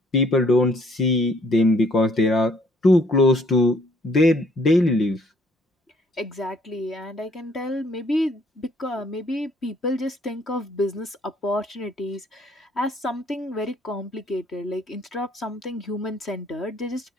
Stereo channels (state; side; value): normal; both; correlation 0.63